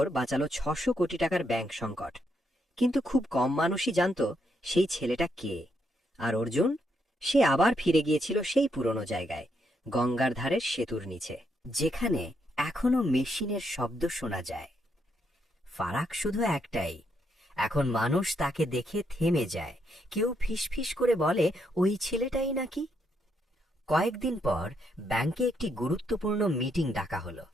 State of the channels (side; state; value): both; normal; correlation 0.77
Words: বাঁচালো 600 কোটি টাকার ব্যাংক সংকট। কিন্তু খুব কম মানুষই জানত সেই ছেলেটা কে। আর অর্জুন, সে আবার ফিরে গিয়েছিল সেই পুরনো জায়গায়, গঙ্গার ধারের সেতুর নিচে, যেখানে এখনো মেশিনের শব্দ শোনা যায়। ফারাক শুধু একটাই, এখন মানুষ তাকে দেখে থেমে যায়। কেউ ফিসফিস করে বলে, ওই ছেলেটাই নাকি। কয়েকদিন পর ব্যাংকে একটি গুরুত্বপূর্ণ মিটিং ডাকা হলো।